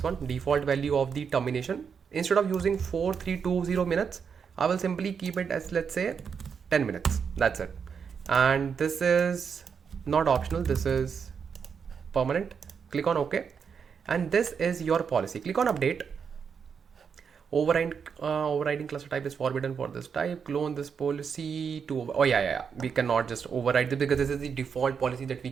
one, default value of the termination. Instead of using 4320 minutes, I will simply keep it as, let's say, 10 minutes. That's it. And this is not optional, this is permanent. Click on OK, and this is your policy. Click on update. Overriding cluster type is forbidden for this type. Clone this policy to, oh yeah, we cannot just override this because this is the default policy that we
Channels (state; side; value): quieter; left; 6.5 dB